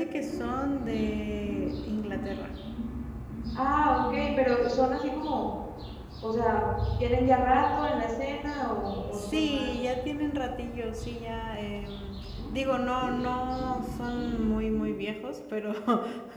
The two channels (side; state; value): both; identical; correlation 1.00